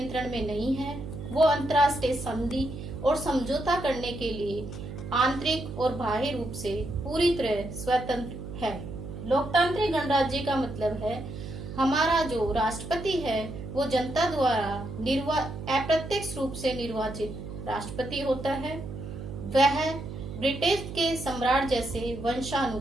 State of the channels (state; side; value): noise; right; hum, 9 dB below the sound